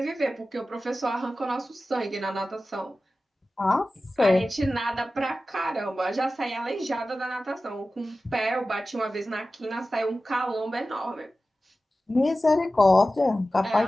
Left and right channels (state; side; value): normal; both; correlation 0.95